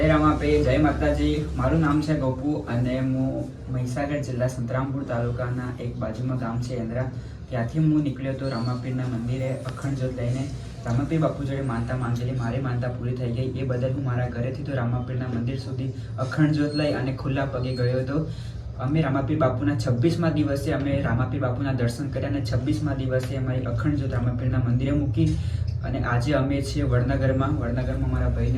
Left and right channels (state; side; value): identical; both; correlation 1.00